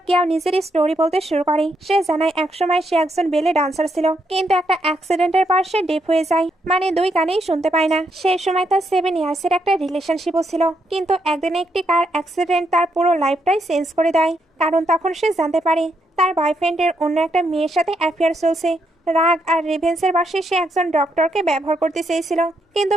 কেউ নিজের স্টোরি বলতে শুরু করে। সে জানায় একসময় সে একজন বেলে ডান্সার ছিল, কিন্তু একটা অ্যাক্সিডেন্টের পর সে ডেফ হয়ে যায়, মানে দুই কানেই শুনতে পায় না। সে সময় তার 7 ইয়ার্সের একটা রিলেশনশিপও ছিল, কিন্তু একদিনে একটি কার অ্যাক্সিডেন্ট তার পুরো লাইফটাই চেঞ্জ করে দেয়। কারণ তখন সে জানতে পারে তার বয়ফ্রেন্ডের অন্য একটা মেয়ের সাথে অ্যাফেয়ার চলছে। রাগ আর রিভেন্সের বশে সে একজন ডক্টরকে ব্যবহার করতে চেয়েছিল, কিন্তু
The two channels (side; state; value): both; normal; correlation 0.78